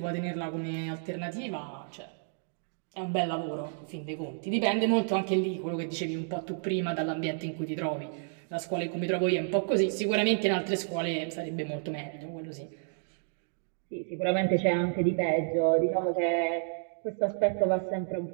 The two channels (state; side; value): silent; left; digital silence